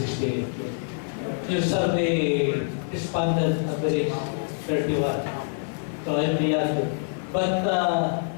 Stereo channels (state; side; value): silent; right; digital silence